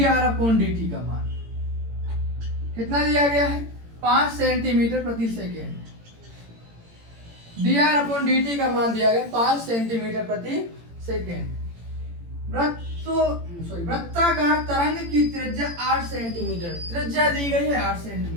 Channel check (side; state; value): left; late; 18 ms